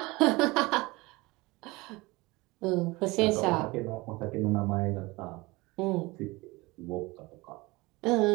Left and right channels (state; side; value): quieter; left; 22.7 dB